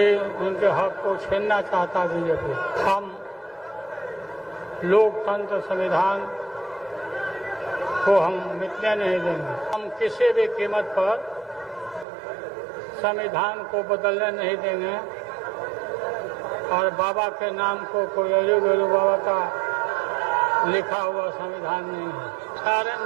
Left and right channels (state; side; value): drops out; left; at 12.1 s